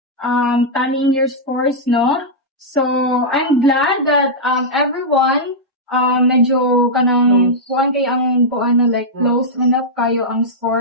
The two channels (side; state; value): both; normal; correlation -0.08